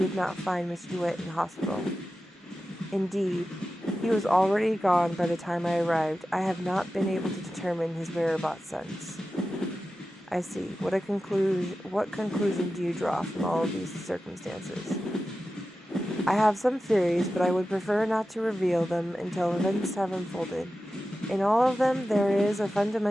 not find Mr. Duet in the hospital. Indeed, he was already gone by the time I arrived. I have not been able to determine his whereabouts since. I see. What conclusion do you draw from all of these circumstances? I have some theories, but I would prefer not to reveal them until events have unfolded. In all of them, there is a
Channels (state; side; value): normal; both; correlation 0.93